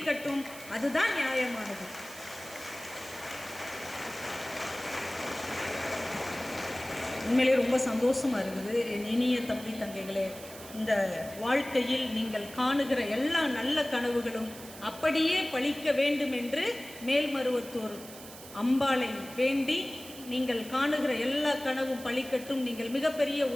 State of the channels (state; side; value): noise; right; hiss, 15 dB below the sound